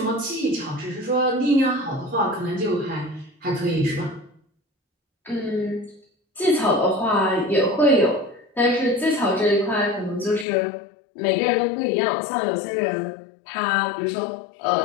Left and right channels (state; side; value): drops out; right; at 10.5 s